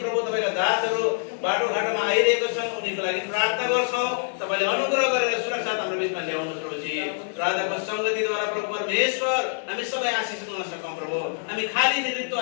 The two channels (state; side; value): silent; right; digital silence